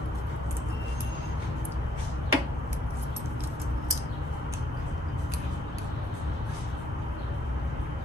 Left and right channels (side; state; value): both; normal; correlation 0.69